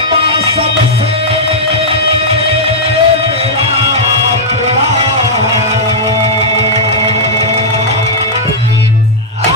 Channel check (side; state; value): both; normal; correlation -0.07